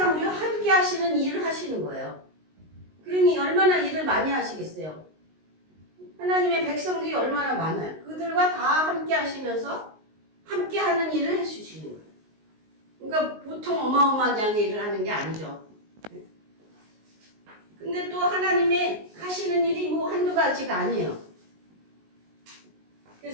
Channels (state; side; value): late; left; 19 ms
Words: 우리와 함께 하시는 일을 하시는 거예요. 그러니 얼마나 일을 많이 하시겠어요. 하나님의 백성들이 얼마나 많아요. 그들과 다 함께 하시면서 함께 하는 일을 해주시는 거예요. 그러니까 보통 어마어마하게 일을 하는 게 아니죠. 근데 또 하나님의 하시는 일이 뭐 한두 가지가 아니에요.